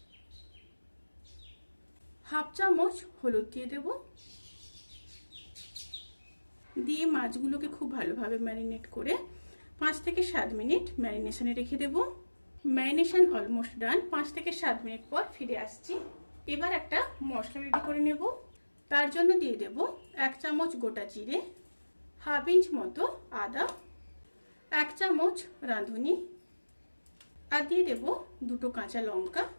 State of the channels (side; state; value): both; inverted; correlation -1.00